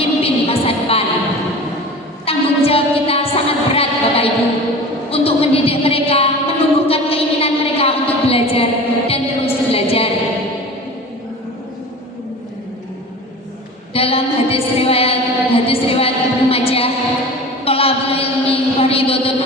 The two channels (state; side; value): normal; both; correlation 0.36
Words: masa depan. Tanggung jawab kita sangat berat, Bapak Ibu, untuk mendidik mereka, menumbuhkan keinginan mereka untuk belajar dan terus belajar. Dalam hadis riwayat Ibnu Majah, thalabul ilmi fardhatun